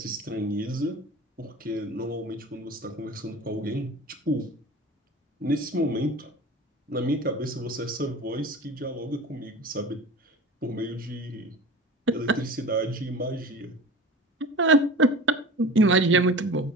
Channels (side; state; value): both; normal; correlation 0.36